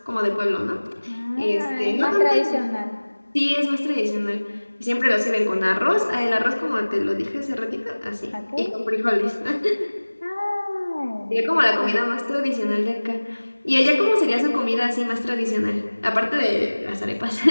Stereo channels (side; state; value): both; inverted; correlation -1.00